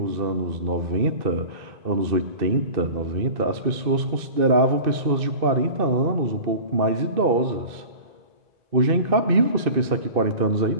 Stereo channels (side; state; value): left; late; 2.6 ms